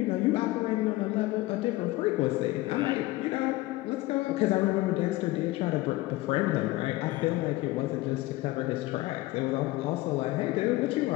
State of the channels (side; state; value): right; quieter; 18.9 dB